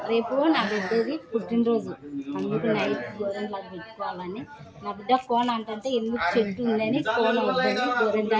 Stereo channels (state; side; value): identical; both; correlation 1.00